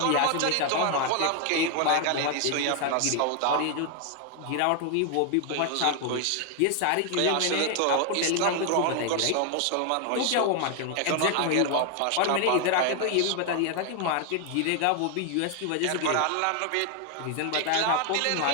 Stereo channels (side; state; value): both; different; correlation 0.00